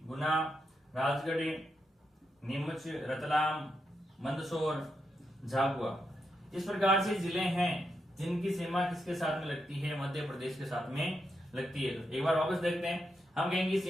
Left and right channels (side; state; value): both; normal; correlation 0.84